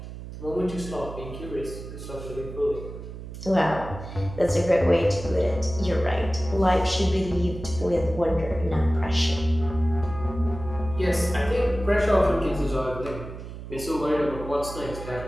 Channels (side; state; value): right; noise; hum, 11 dB below the sound